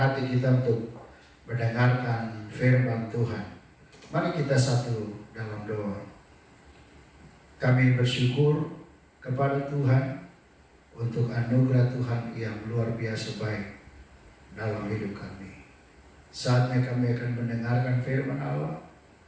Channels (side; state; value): both; identical; correlation 1.00